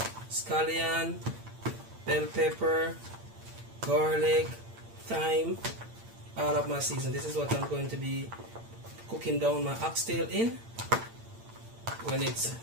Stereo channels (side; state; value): left; late; 8.8 ms